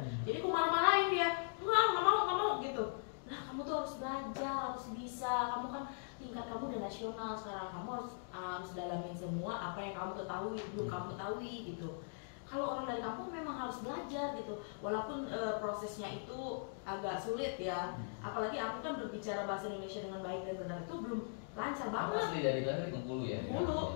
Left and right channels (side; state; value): right; silent; digital silence